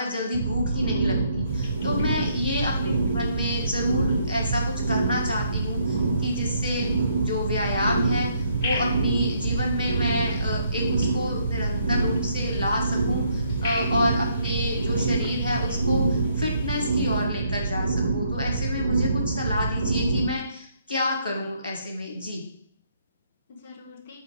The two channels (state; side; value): inverted; both; correlation -0.70